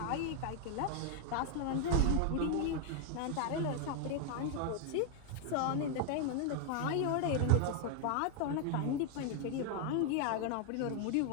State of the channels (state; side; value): different; both; correlation 0.00